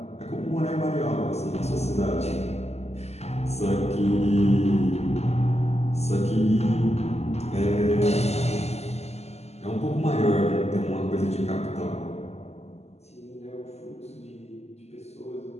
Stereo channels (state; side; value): late; right; 0.31 ms